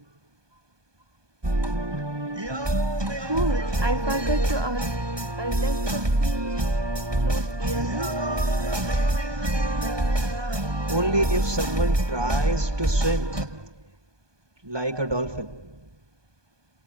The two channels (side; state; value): left; late; 1.2 ms